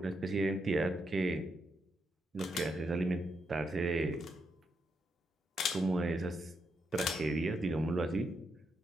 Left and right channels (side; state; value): both; normal; correlation 0.81